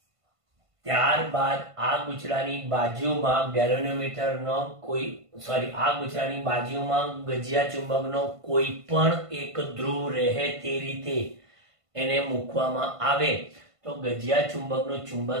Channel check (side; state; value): left; late; 1.5 ms